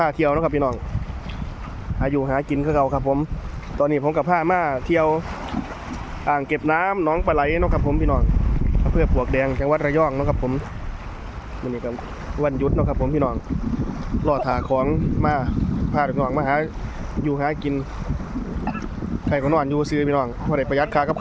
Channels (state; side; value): identical; both; correlation 1.00